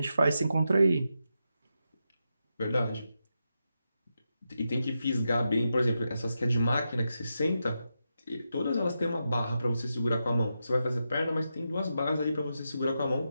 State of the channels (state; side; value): inverted; both; correlation -0.87